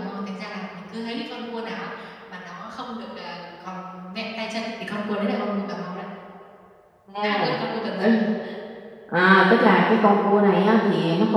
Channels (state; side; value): identical; both; correlation 1.00